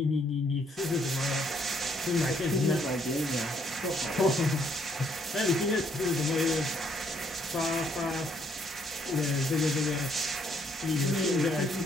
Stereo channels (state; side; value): normal; both; correlation 0.68